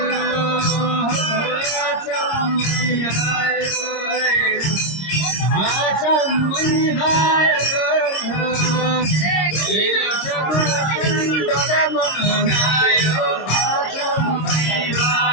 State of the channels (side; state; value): right; late; 26 ms